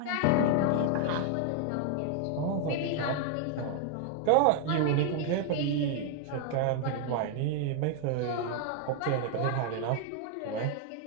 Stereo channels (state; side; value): different; both; correlation 0.00